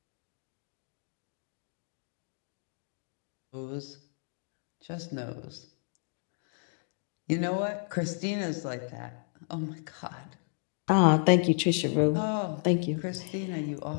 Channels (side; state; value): right; silent; digital silence